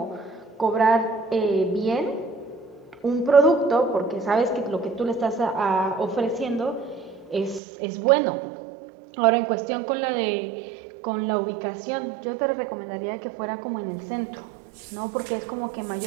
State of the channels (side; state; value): left; drops out; at 7.6 s